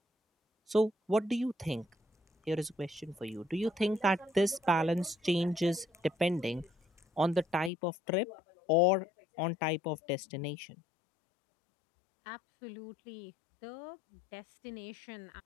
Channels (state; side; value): drops out; right; at 7.7 s